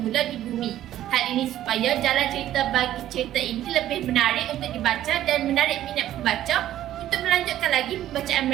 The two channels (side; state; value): left; quieter; 12.7 dB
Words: di bumi. Hal ini supaya jalan cerita bagi cerita ini lebih menarik untuk dibaca dan menarik minat pembaca untuk melanjutkan lagi pembacaan